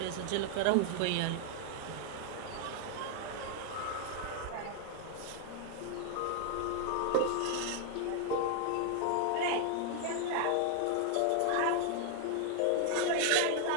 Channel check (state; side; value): different; both; correlation 0.00